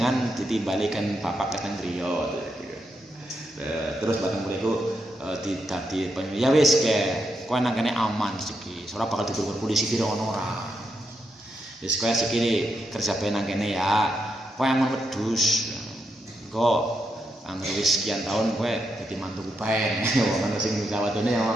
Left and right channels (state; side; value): normal; both; correlation 0.82